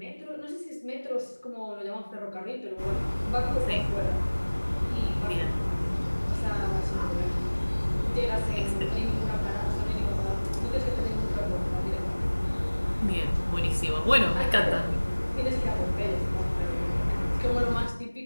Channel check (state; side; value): inverted; both; correlation -1.00